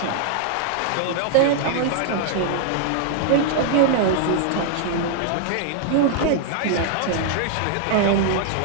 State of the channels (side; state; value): both; different; correlation -0.01